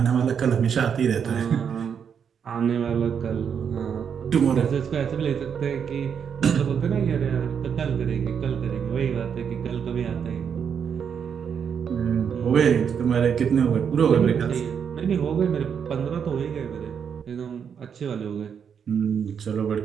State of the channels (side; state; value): left; quieter; 7.3 dB